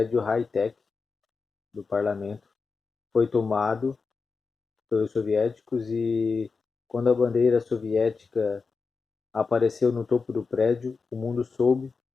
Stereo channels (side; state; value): right; quieter; 4.7 dB